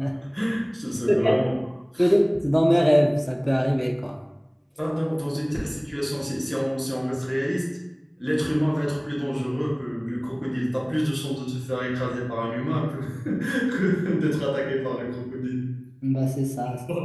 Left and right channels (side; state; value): both; identical; correlation 1.00